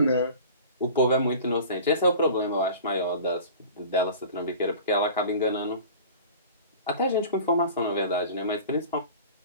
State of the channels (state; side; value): inverted; both; correlation -0.40